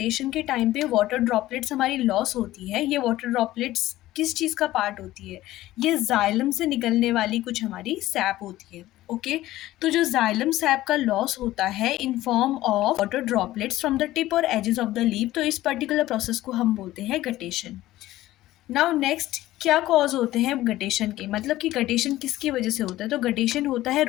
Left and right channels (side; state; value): right; quieter; 15.7 dB